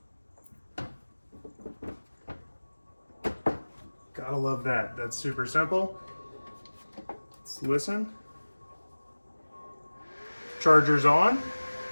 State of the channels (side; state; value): both; inverted; correlation -1.00